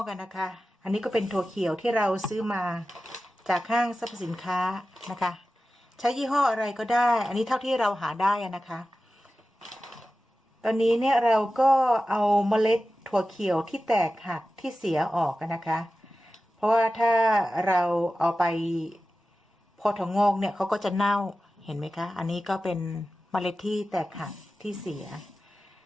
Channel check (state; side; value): normal; both; correlation 0.94